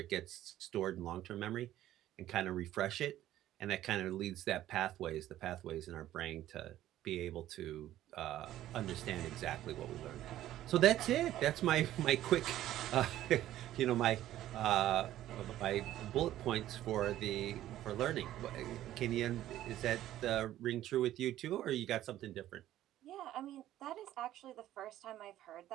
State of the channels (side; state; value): left; quieter; 13.4 dB